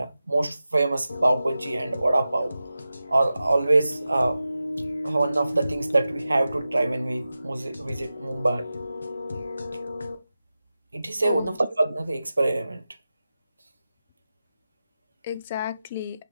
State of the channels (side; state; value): both; inverted; correlation -0.93